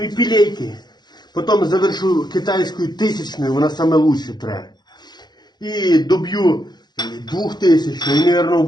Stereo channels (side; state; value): right; late; 0.21 ms